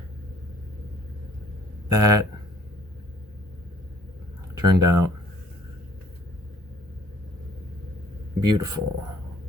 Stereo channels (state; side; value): normal; both; correlation 0.57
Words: that turned out beautiful.